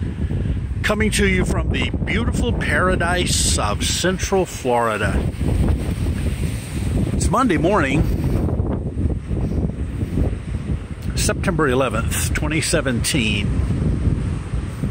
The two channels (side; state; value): both; identical; correlation 1.00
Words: coming to you from the beautiful paradise of Central Florida. It's Monday morning, September 11th, 2017.